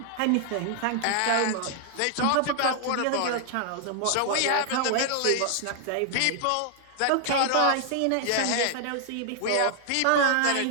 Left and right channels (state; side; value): different; both; correlation 0.00